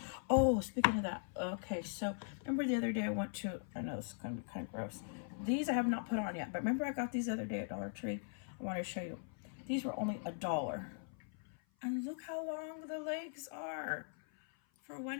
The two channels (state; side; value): silent; right; 51 dB below the other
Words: Oh, speaking of that, okay, so remember the other day I went to, I know this is going to be kind of gross. These I have not put on yet, but remember I got these the other day at Dollar Tree? I want to show you. These were only $1. And look how long the legs are for